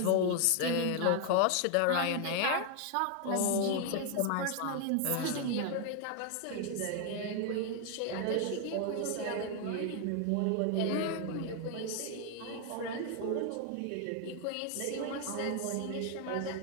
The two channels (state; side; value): different; both; correlation 0.00